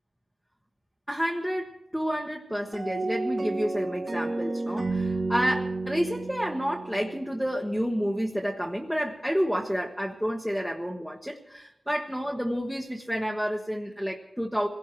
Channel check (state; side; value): normal; both; correlation 0.98